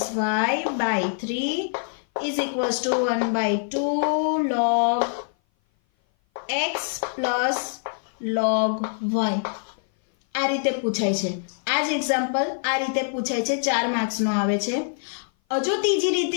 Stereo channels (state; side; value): silent; right; 57 dB below the other